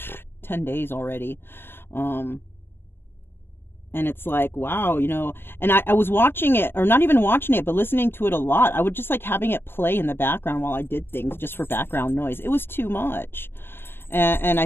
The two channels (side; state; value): right; late; 0.10 ms